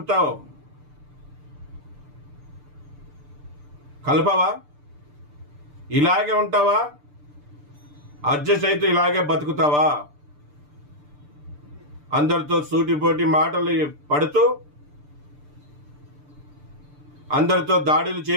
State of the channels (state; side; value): late; left; 6.8 ms